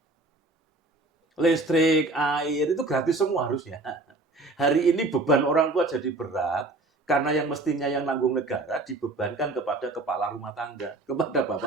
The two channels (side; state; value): left; quieter; 3.1 dB